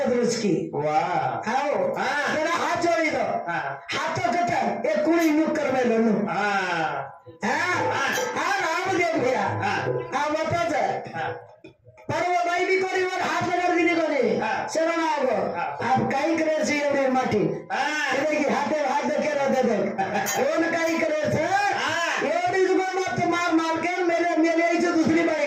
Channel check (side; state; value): both; identical; correlation 1.00